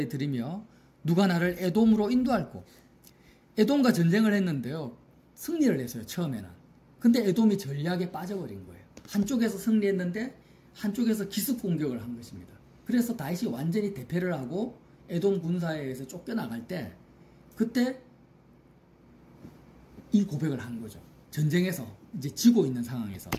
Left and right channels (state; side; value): identical; both; correlation 1.00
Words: 드리며 누가 나를 에돔으로 인도할꼬. 에돔과 전쟁을 했는데요, 승리를 했어요, 처음에는. 근데 에돔이 전략에 빠져버린 거예요. 한쪽에서 승리했는데 한쪽에서 기습 공격을 한 것입니다. 그래서 다윗이 완전히 대패를 하고 에돔 군사에 의해서 쫓겨나갈 때 그때 이 고백을 한 거죠. 전쟁에서 이제 지고 있는 상황에서